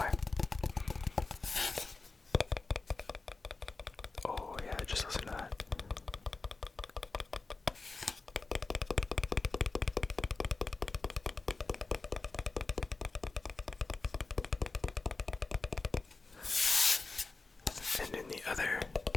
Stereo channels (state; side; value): quieter; right; 3.8 dB